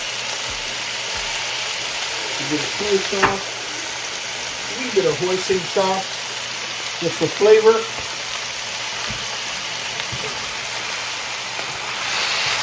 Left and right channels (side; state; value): both; identical; correlation 1.00